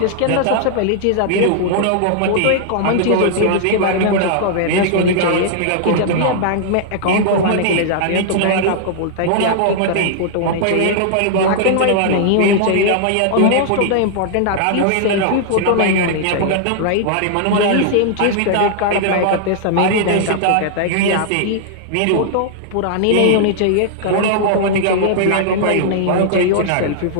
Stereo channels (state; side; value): different; both; correlation -0.01